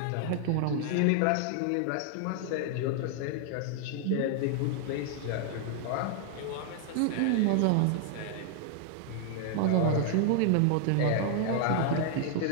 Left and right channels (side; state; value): both; different; correlation 0.00